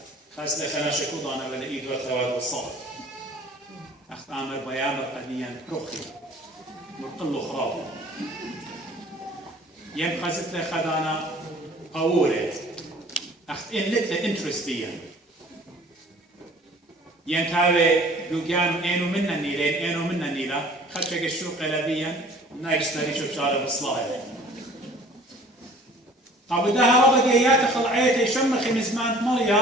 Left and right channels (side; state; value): both; normal; correlation 0.51